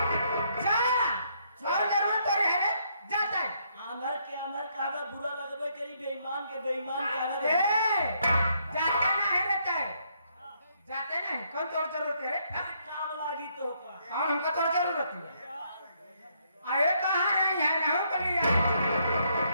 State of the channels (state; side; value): inverted; both; correlation -0.72